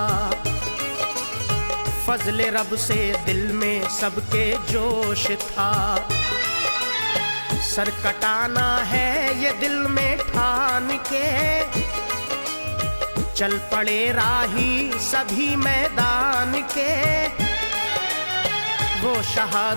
फजले रब से दिल में सबके जोश था। सर कटाना है ये दिल में ठान के, चल पड़े राही सभी मैदान के। वो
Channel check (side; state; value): both; inverted; correlation -1.00